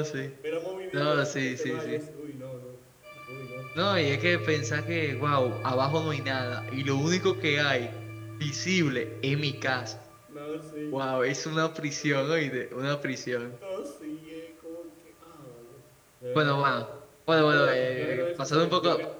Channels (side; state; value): both; identical; correlation 1.00